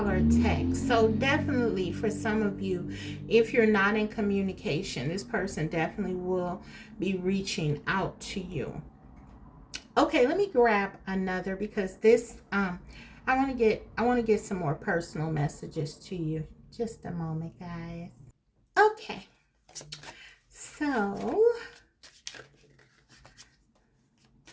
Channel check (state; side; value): identical; both; correlation 1.00